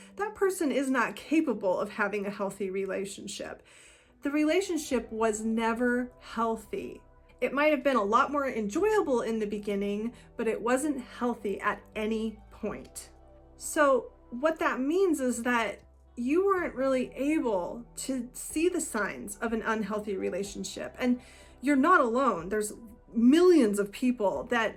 that person is not capable of having a healthy relationship. The relationship was never healthy. It might have been a lot more enjoyable in the beginning, but it wasn't healthy at any point. So what that means is that you weren't really able to see the signs of an unhealthy relationship. And you're not alone. There's millions of people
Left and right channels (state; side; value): identical; both; correlation 1.00